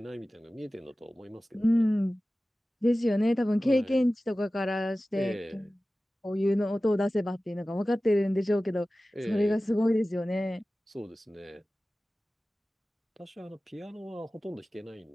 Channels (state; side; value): normal; both; correlation 0.96